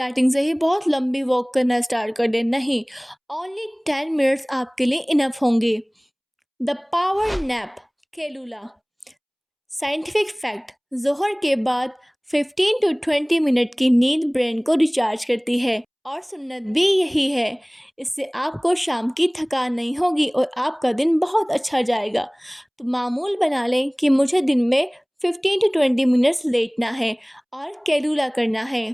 سے ہی بہت لمبی واک کرنا اسٹارٹ کر دیں، نہیں، اونلی 10 منٹس آپ کے لیے انف ہوں گے۔ The power nap. کیلولا۔ Scientific fact, ظہر کے بعد 15 to 20 منٹ کی نیند برین کو ریچارج کرتی ہے، اور سنت بھی یہی ہے۔ اس سے آپ کو شام کی تھکان نہیں ہوگی اور آپ کا دن بہت اچھا جائے گا۔ تو معمول بنا لیں کہ مجھے دن میں 15 to 20 منٹس لیٹنا ہے اور کیلولا کرنا ہے۔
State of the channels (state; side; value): identical; both; correlation 1.00